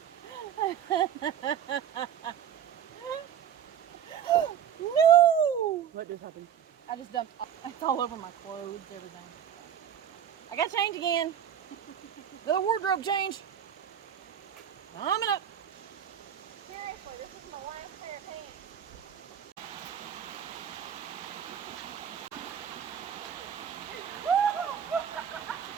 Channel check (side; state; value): left; quieter; 9.2 dB